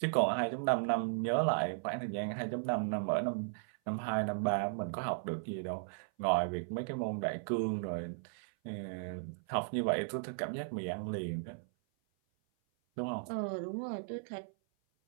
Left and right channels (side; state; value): left; silent; 54 dB below the other